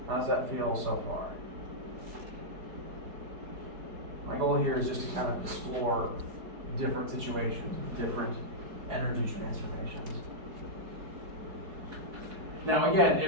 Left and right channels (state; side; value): late; left; 4.7 ms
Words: How does that feel so far? My goal here is just to kind of explore different situations, different energy transformations. Now again,